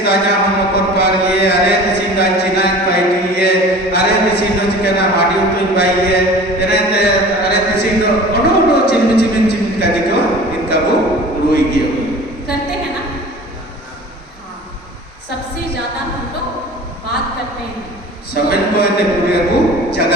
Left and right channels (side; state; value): both; normal; correlation 0.41